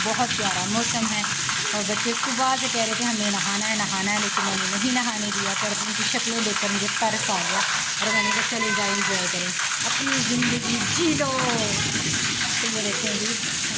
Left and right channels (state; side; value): identical; both; correlation 1.00